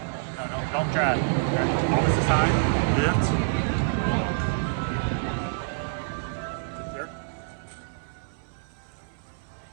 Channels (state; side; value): silent; left; 60 dB below the other